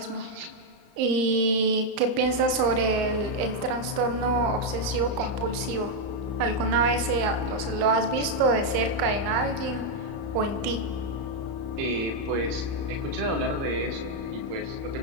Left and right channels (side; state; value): left; late; 33 ms